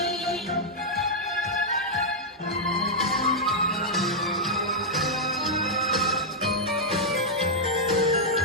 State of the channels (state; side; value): normal; both; correlation -0.05